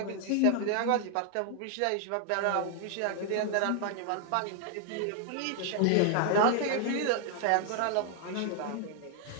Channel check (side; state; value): both; different; correlation 0.00